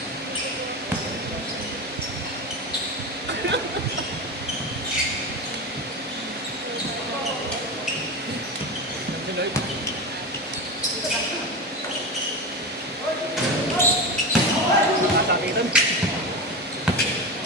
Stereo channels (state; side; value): normal; both; correlation 0.22